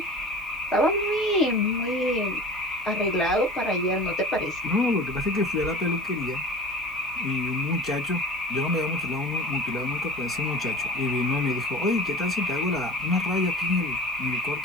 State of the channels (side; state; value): left; noise; hiss, 29 dB below the sound